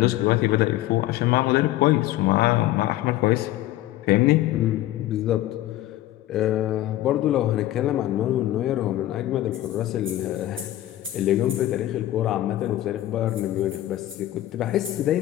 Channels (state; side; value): quieter; right; 14.7 dB